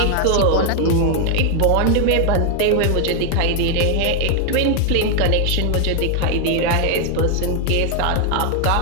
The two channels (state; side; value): different; both; correlation 0.00